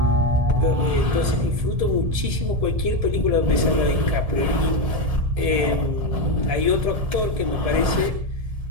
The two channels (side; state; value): left; late; 1.7 ms